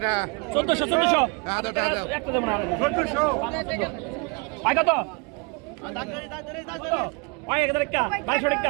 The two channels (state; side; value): quieter; left; 31.9 dB